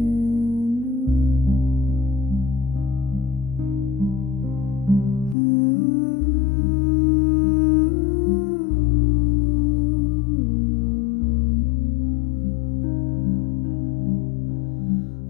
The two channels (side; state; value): right; drops out; at 5.4 s